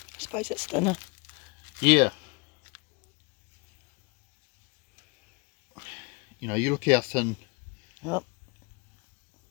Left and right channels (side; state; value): right; quieter; 28.9 dB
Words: I suppose it's thinner. you know, you look how thin Oh.